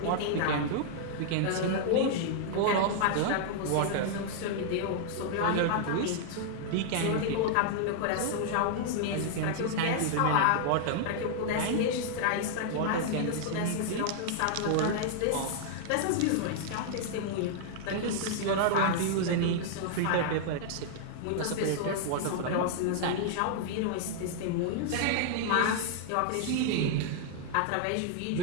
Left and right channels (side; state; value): both; different; correlation -0.01